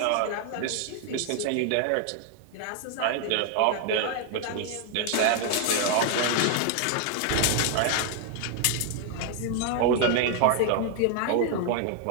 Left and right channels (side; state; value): both; different; correlation 0.00